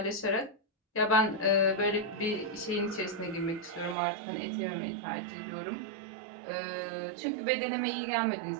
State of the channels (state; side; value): drops out; left; at 4.0 s